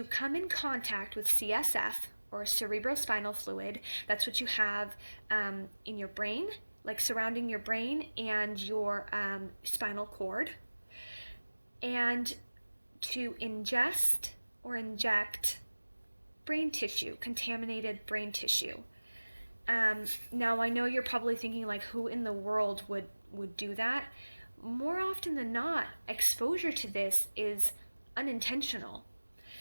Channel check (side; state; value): both; inverted; correlation -1.00